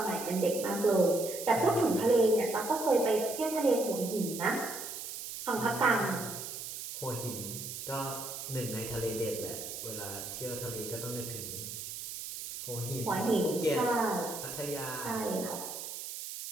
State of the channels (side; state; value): right; noise; hiss, 8 dB below the sound